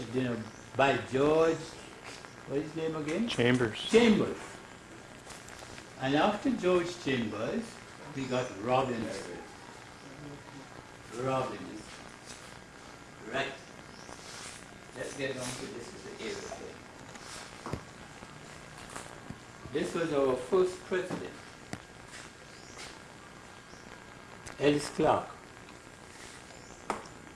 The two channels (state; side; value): identical; both; correlation 1.00